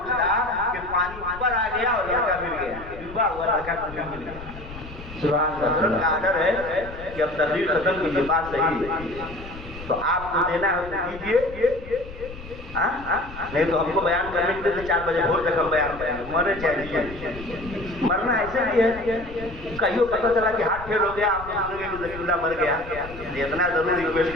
کہ پانی اوپر آ گیا اور لڑکا گر گیا، ڈوبا ہوا لڑکا کنویں میں گر گیا۔ سبحان اللہ، حضرت کا آرڈر ہے کہ اب تقریر ختم کیجیے، بات صحیح ہے تو آپ کو دینا ہے تو دیجیے، نہیں تو ہم کو بیان کرنے کے لیے 4 بجے بھور تک ہم بیان کریں گے، مرنے چاہیے۔ مرنا ایسے بھی ہے، کہیں پتہ چلا کہ ہاتھ پھیل ہو گیا، آپ کو سنیں گے کہ ذکی اللہ مر گیا، اتنا ضرور ریکویسٹ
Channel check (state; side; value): noise; left; rumble, 14 dB below the sound